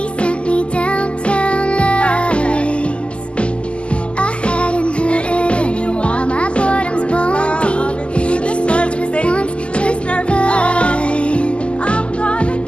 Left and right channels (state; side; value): late; right; 0.053 ms